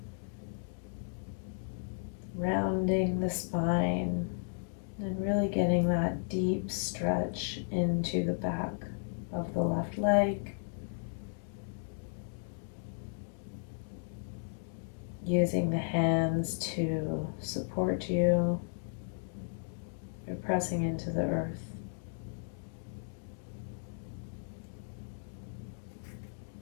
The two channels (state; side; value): silent; right; digital silence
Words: rounding the spine, and really getting that deep stretch into the back of the left leg. Using the hands to support you. You're pressing into the earth.